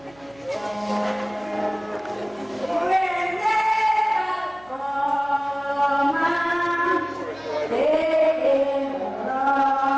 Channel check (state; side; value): noise; right; hum, 27 dB below the sound